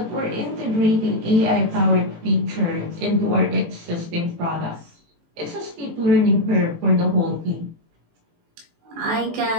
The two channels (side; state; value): left; late; 18 ms